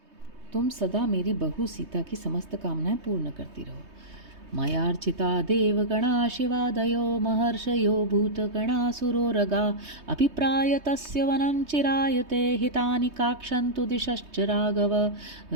तुम सदा मेरी बहू सीता की समस्त कामनाएं पूर्ण करती रहो। मयार्चिता देवगणा शिवादयो महर्षयो भूतगणासुरोरगा अभिप्राय तस्य वनं चिरायते हितानि काक्षन्तु दिशश्च राघव।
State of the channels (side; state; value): left; late; 3.2 ms